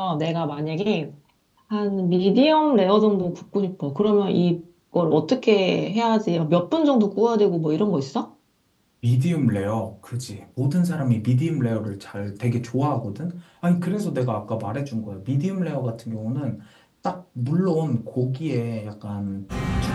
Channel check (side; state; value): both; identical; correlation 1.00